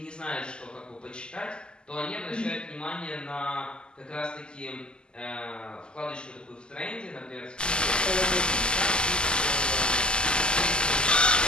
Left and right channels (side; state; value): right; late; 0.048 ms